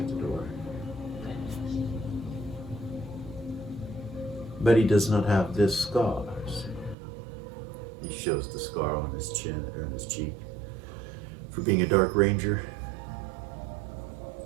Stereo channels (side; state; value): left; drops out; at 7.0 s